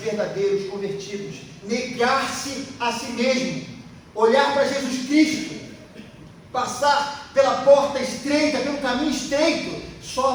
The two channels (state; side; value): identical; both; correlation 1.00